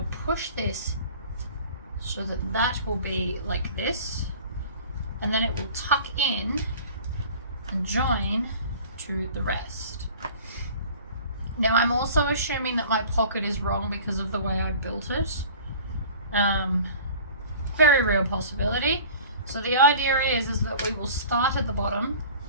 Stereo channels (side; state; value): both; inverted; correlation -0.44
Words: push this so that that will be like this, and then it will tuck in and join to the rest. Now I'm also assuming that my pocket is wrong because of the way I built it. Very real possibility. So the idea is that we will start at the bottom,